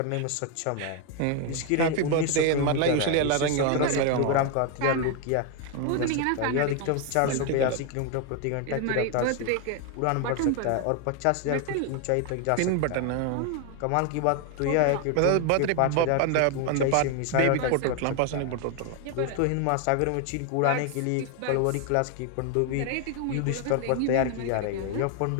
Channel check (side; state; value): both; different; correlation 0.01